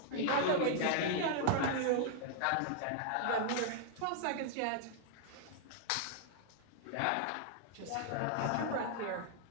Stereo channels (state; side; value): different; both; correlation -0.01